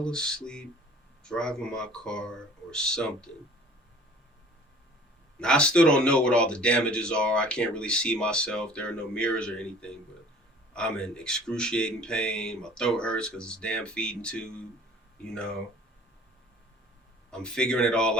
asleep driving my car or something. Now, I still don't know what all the damages are. I can't really see myself. There are no mirrors or anything, but I'm in excruciating pain. My throat hurts because it's damn feeding tube. I'm figuring it all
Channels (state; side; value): normal; both; correlation 0.49